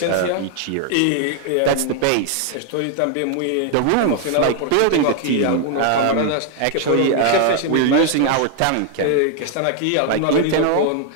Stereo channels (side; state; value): both; different; correlation 0.00